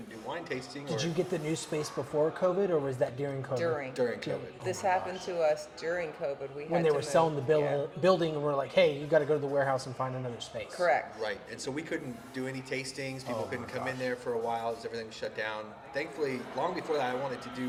do wine tasting. Did you get the new space before COVID, or was that during COVID? During COVID? This happened to us during COVID. We When had they to were move. selling the Yeah. building, and we're like, hey, you got to go to the warehouse and find another space. Correct. Right, and so we couldn't do any tastings. People Oh couldn't my come in there for a while as everything was shut down. Thankfully, long before that, I wanted to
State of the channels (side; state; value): both; identical; correlation 1.00